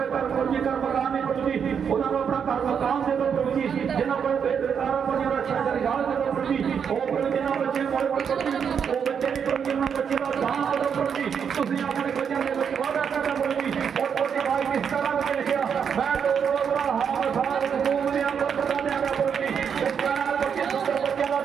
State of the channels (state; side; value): quieter; left; 7.2 dB